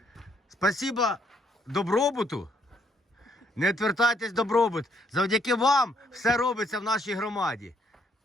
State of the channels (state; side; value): normal; both; correlation 0.70